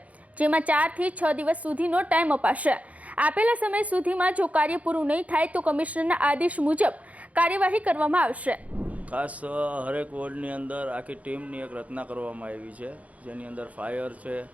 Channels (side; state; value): left; late; 0.068 ms